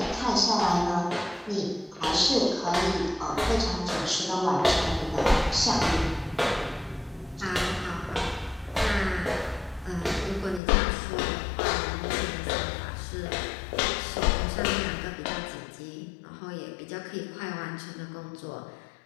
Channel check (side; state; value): right; drops out; at 10.6 s